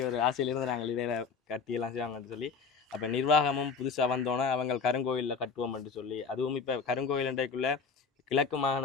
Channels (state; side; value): quieter; right; 5.4 dB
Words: ஒரு ஆசையிலிருந்து நாங்கள் இதில் கட்டியெல்லாம் செய்வாங்கன்னு சொல்லி அப்போ நிர்வாகமும் புதுசாக வந்தோன்னே அவங்க கருங்கோயிலில் கட்டுவோம் என்று சொல்லி, அதுவும் இப்போ கருங்கோயில் என்றைக்குள்ளே கிழக்கு